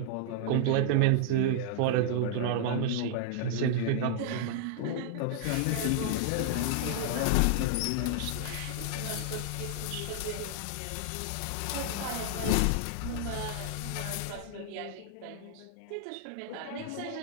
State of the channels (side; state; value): both; different; correlation -0.01